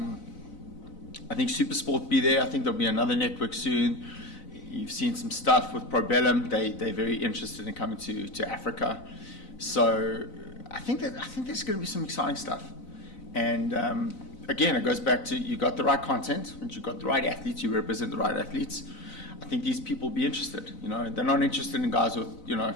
think Supersport will be there. I think there'll be another network soon. You've seen some stuff with Probellum. They're very interested in coming to Africa. So I think there's going to be some exciting stuff. And again, it goes back to, you got the right content, and you got the right athletes. You represent the right athletes. I think these people will be interested. They're not interested in guys with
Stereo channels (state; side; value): late; right; 4.0 ms